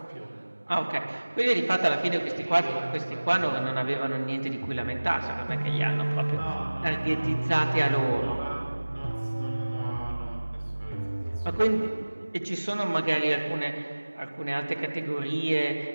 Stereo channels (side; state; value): both; inverted; correlation -1.00